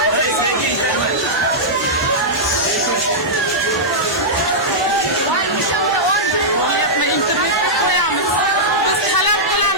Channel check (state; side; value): normal; both; correlation -0.10